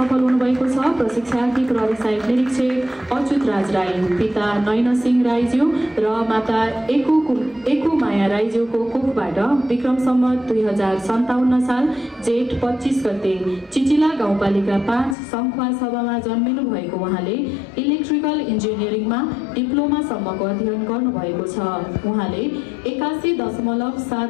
हुनुभएको छ प्रशिक्षार्थी प्रहरी सहायक निरीक्षक अच्युत राज राई, पिता नयन सिंह राईज्यू र माता एकु माया राईज्यूको कोखबाट विक्रम सम्वत 2057 साल जेठ 25 गते चिचिला गाउँपालिका 5 सङ्खुवा सभामा जन्मिनु भएको उहाँले इलेक्ट्रिकल इन्जिनियरिङमा डिप्लोमासम्मको अध्ययन गर्नुभएको छ। उहाँले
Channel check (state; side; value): drops out; right; at 15.2 s